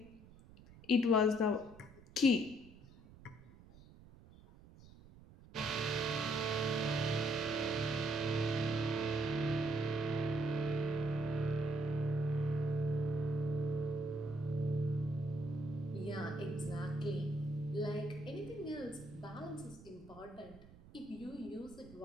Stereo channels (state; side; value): noise; right; rumble, 21 dB below the sound